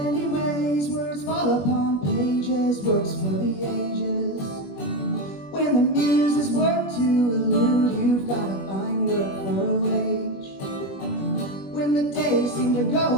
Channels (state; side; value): late; right; 21 ms